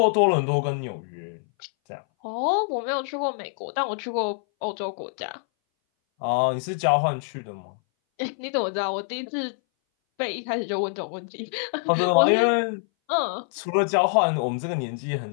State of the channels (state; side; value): silent; right; 60 dB below the other